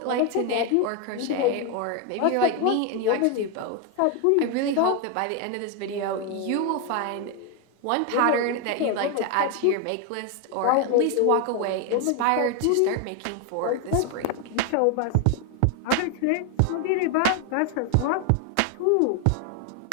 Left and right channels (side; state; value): both; different; correlation 0.01